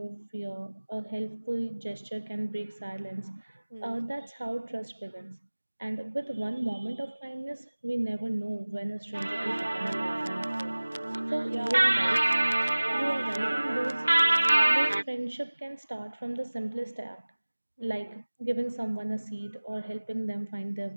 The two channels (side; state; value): both; inverted; correlation -1.00